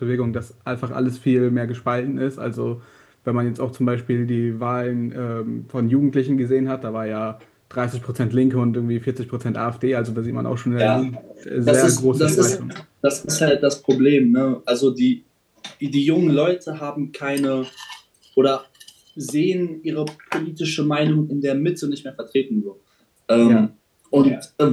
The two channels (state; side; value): identical; both; correlation 1.00